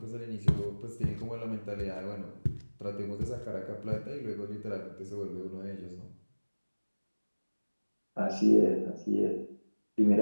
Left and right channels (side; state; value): both; inverted; correlation -1.00